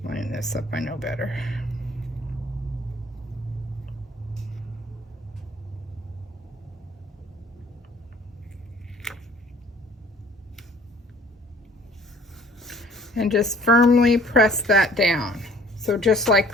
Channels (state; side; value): normal; both; correlation 0.54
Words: Line this up, I know better. And just firmly press that down. So just